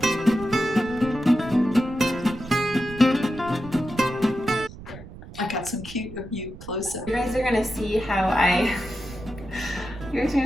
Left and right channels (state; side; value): noise; right; rumble, 15 dB below the sound